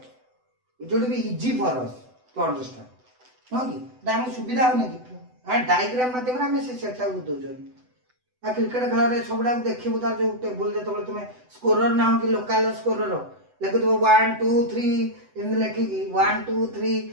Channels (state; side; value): late; left; 8.0 ms